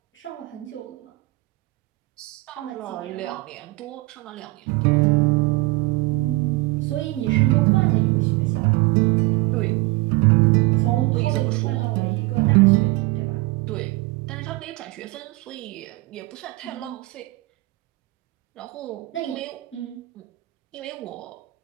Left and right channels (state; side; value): quieter; left; 21.7 dB